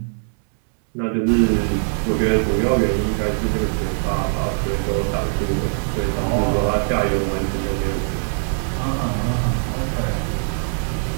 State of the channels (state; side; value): silent; left; digital silence